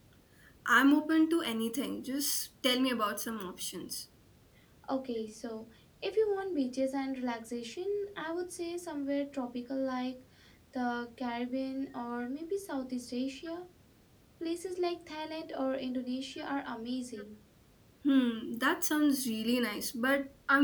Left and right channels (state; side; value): identical; both; correlation 1.00